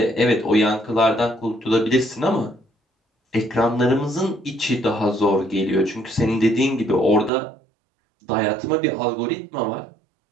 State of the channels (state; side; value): drops out; left; at 7.3 s